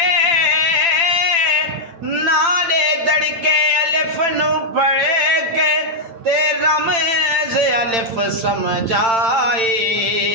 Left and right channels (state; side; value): late; left; 8.8 ms